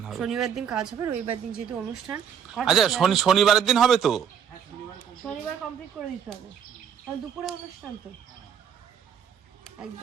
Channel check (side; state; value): left; quieter; 8.2 dB